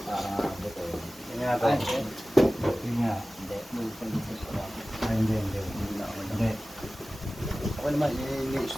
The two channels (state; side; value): normal; both; correlation 0.97